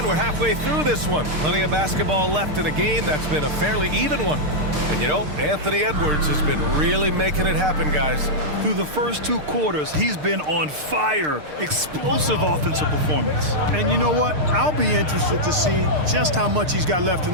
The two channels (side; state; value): left; late; 6.6 ms